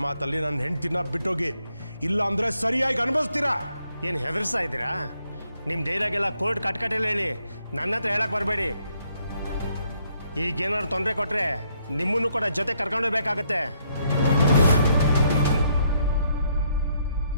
ಮಾತಲ್ಲಿ ನನ್ನ ಹೆಂಡ್ತಿನ ಬಿಟ್ಟೋಗಿ, ಇಲ್ಲ ಅಂದರೆ ಸರಿಯಾಗಿ ಅನುಭವಿಸ್ತೀರಾ. ಏನು ಹೆದರ್ಸ್ತಾ ಇದ್ದೀರಾ? ನಿಮ್ಮ ಡೈಲಾಗೆಲ್ಲ ಕೋರ್ಟ್ ಕಟ್ಕಟ್ಟೆಲ್ಲ ಹೇಳಿ ನನ್ನ ಹತ್ರ ಹೇಳಕ್ಕೆ ಬರಬೇಡಿ. ಈಗೇನಾದ್ರು ತೊಂದರೆ ಕೊಟ್ಟರೆ ನಿಮ್ಮನ್ನು ಕೂಡ ಜೊತೆ ಕರ್ಕೊಂಡೋಗ್ಬೇಕಾಗತ್ತೆ.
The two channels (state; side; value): inverted; both; correlation -0.73